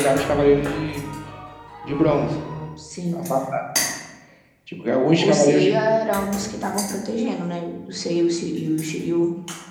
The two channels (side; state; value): both; identical; correlation 1.00